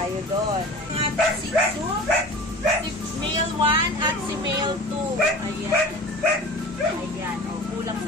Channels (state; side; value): normal; both; correlation 0.38